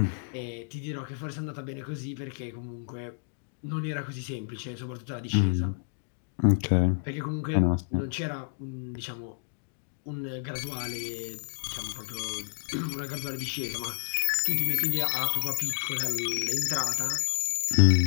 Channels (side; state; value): right; silent; digital silence